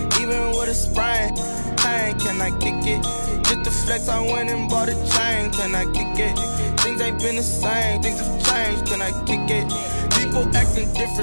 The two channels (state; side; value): inverted; both; correlation -1.00